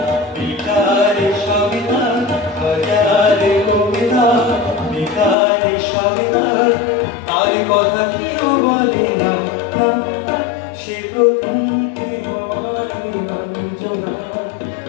বেকারে সবিতা, হাজারে কবিতা বেকারে সবিতা, তার কথা কেউ বলে না, সে প্রথম প্রেম আমার নিরঞ্জনা,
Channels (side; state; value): right; drops out; at 5.4 s